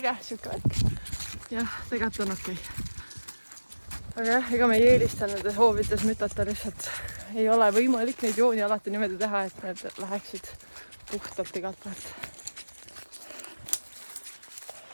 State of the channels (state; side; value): inverted; both; correlation -1.00